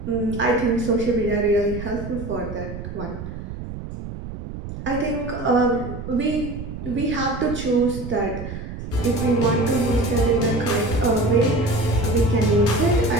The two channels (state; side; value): noise; right; rumble, 9 dB below the sound